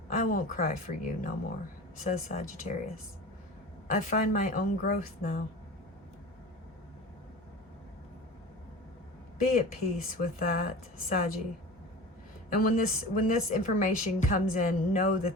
I won't cry for you no more, says Sagittarius. I find my own growth now. Be at peace with that, Saggy. And when this information comes in, know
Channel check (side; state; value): both; normal; correlation 0.35